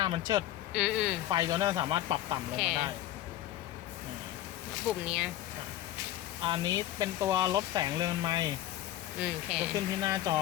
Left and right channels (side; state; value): right; quieter; 13.6 dB